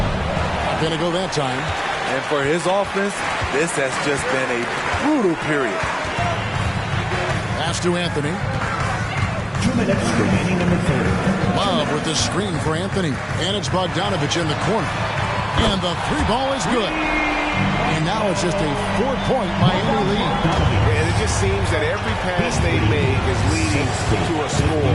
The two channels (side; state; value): both; identical; correlation 1.00